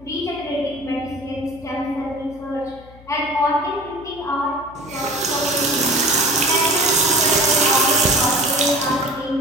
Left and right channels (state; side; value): noise; left; hum, 22 dB below the sound